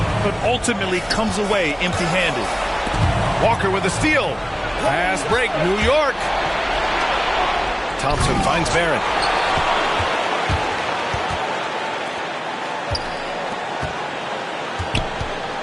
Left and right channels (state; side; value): identical; both; correlation 1.00